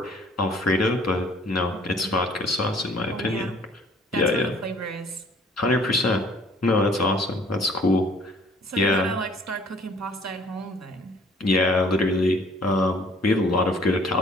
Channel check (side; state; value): both; normal; correlation 0.56